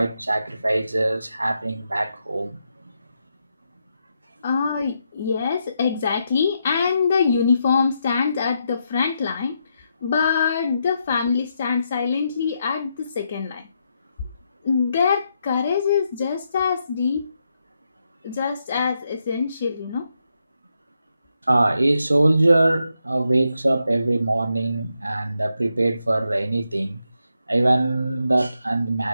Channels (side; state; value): both; inverted; correlation -0.83